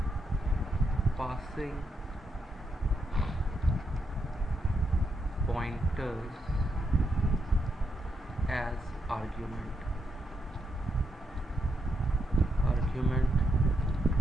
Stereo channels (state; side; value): normal; both; correlation 0.81